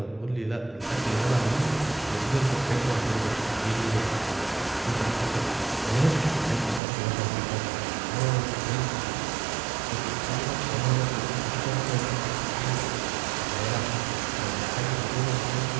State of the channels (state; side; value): drops out; left; at 6.8 s